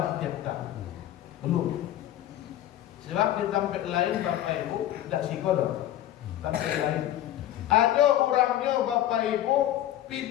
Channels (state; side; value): quieter; right; 12.8 dB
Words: tiap tahun. Belum. Sebab di tempat lain Bapak Ibu tidak sikodok. Tempat lain ada orangnya Bapak Ibu